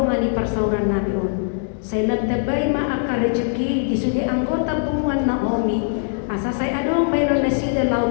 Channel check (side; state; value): right; silent; 65 dB below the other